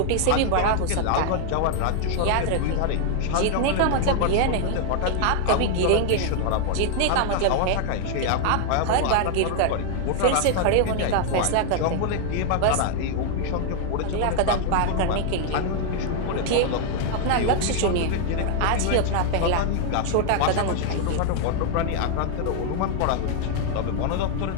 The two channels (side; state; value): both; different; correlation 0.00